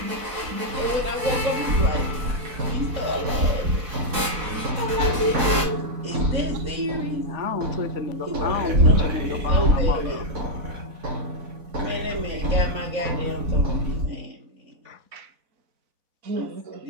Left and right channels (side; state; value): left; late; 4.0 ms